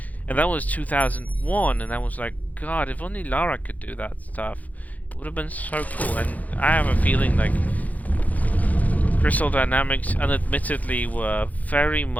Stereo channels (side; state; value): right; late; 0.077 ms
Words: And that was 2001, and I was like, God, if only Lara could do that stuff, it would have been so cool. And I have a feeling like Crystal Dynamics unadmittedly were very